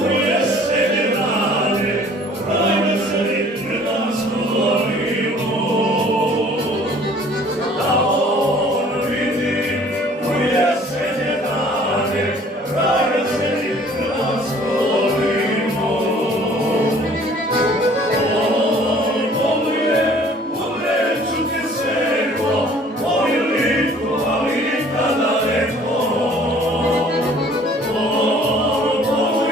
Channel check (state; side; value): normal; both; correlation 0.54